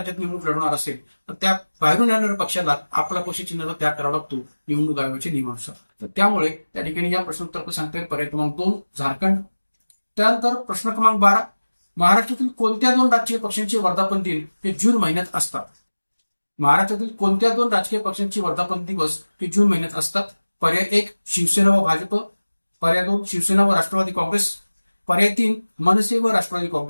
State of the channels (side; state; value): both; inverted; correlation -1.00